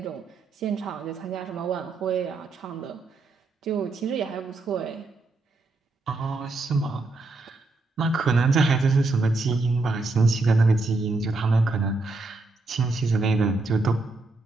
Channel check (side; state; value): left; quieter; 3.3 dB